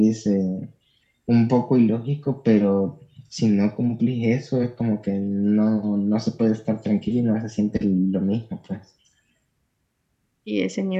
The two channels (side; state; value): both; identical; correlation 1.00